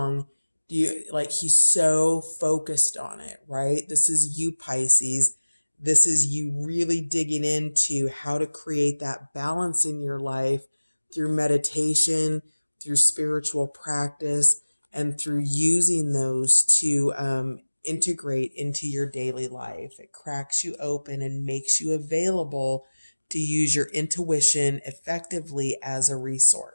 he's so focused on it, right? This is you, Pisces. This is you really digging into how to create that balance in your life through meditation, through spiritual practice, and through using those to integrate into your daily life. It cracks you open and makes you available to use your intuition effectively as a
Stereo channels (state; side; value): inverted; both; correlation -1.00